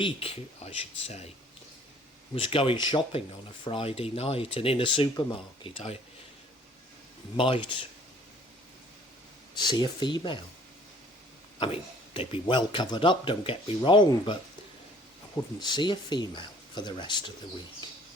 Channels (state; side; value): normal; both; correlation 0.55